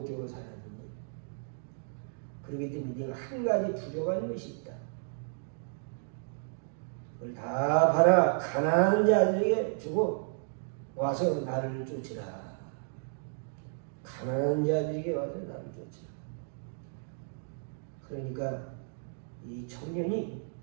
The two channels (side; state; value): left; silent; digital silence